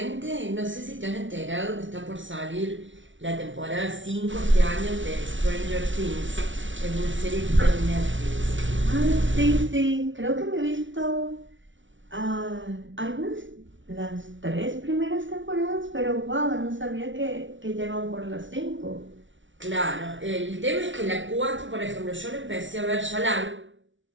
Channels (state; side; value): late; left; 0.56 ms